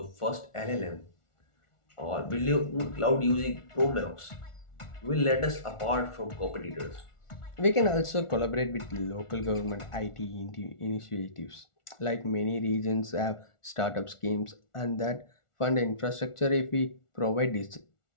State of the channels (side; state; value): right; late; 1.4 ms